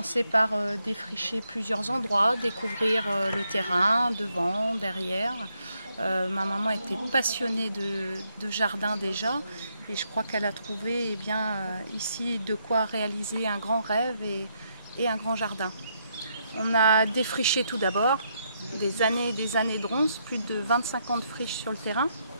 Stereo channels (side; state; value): both; inverted; correlation -0.77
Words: par défricher plusieurs endroits, découvrir le terrain, devant, derrière. Ma maman était passionnée de jardin déjà, et je crois qu'elle a trouvé ici de quoi réaliser un grand rêve et un grand jardin. On a défriché tout d'abord, des années de ronces, plus de 25 ans de friche sur le terrain.